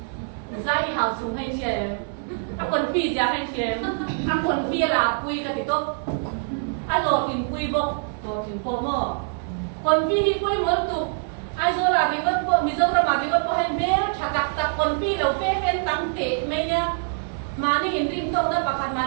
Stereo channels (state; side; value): silent; left; 59 dB below the other